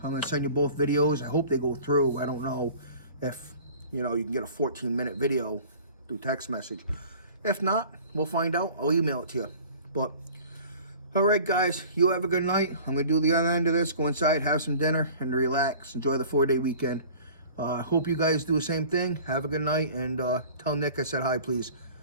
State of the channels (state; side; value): inverted; both; correlation -0.45